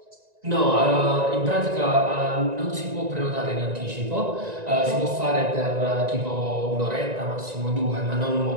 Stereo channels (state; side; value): late; left; 1.9 ms